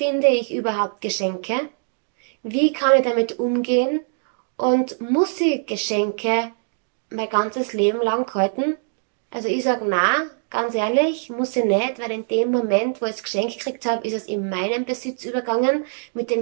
ich überhaupt Geschenke? Wie kann ich damit umgehen? Und muss ich Geschenke mein ganzes Leben lang halten? Also ich sage na, ganz ehrlich, muss ich nicht, weil in dem Moment, wo ich das Geschenk gekriegt habe, ist es in meinen Besitz übergegangen. Mit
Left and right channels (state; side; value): silent; left; digital silence